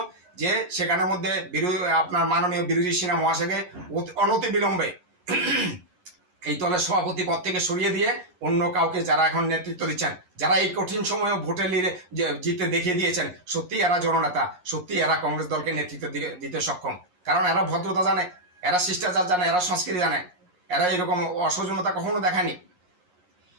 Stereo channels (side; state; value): left; late; 11 ms